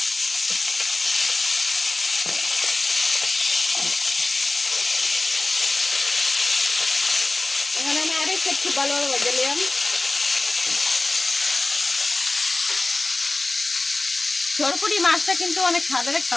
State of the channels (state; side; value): quieter; right; 3.1 dB